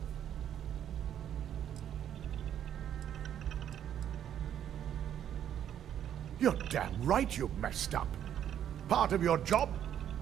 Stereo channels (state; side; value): quieter; left; 10.0 dB